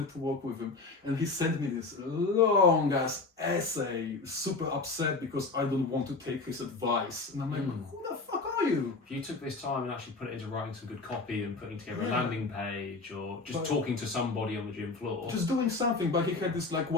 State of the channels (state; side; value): quieter; right; 3.8 dB